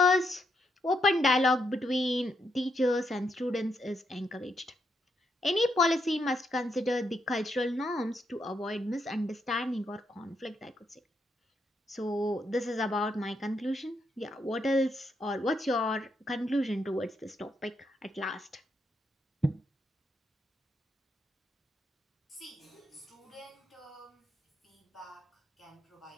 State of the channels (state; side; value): normal; both; correlation 0.79